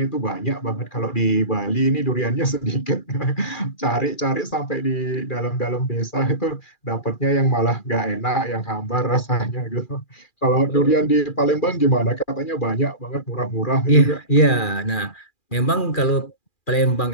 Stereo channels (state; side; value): late; right; 2.4 ms